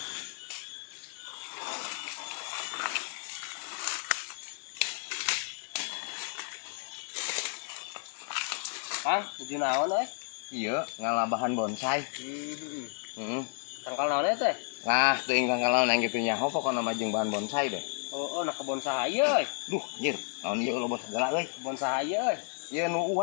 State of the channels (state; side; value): silent; right; digital silence